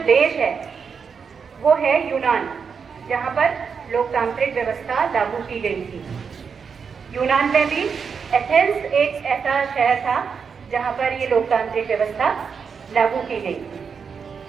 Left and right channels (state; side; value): quieter; left; 6.1 dB